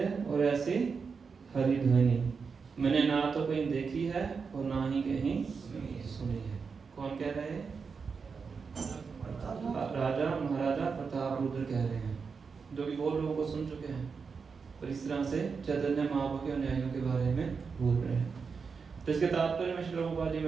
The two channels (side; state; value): left; quieter; 5.4 dB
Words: और ऐसी हरि ध्वनि मैंने ना तो कहीं देखी है और ना ही कहीं सुनी है। कौन कह रहे हैं? राजा महाराजा प्रताप रुद्र कह रहे हैं, जो कि बहुत लोगों को सुन चुके हैं, और इस तरह से चैतन्य महाप्रभु के अनुयायियों के बारे में बोल रहे हैं। तो इसके तात्पर्य में श्री प्रभुपाद जी